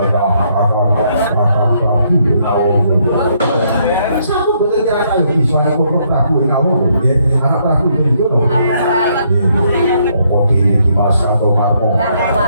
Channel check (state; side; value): inverted; both; correlation -0.72